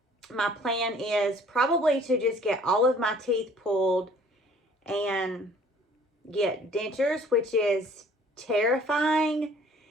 my plan is probably to just get all of my teeth pulled and get dentures, which is terrifying.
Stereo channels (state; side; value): normal; both; correlation 0.54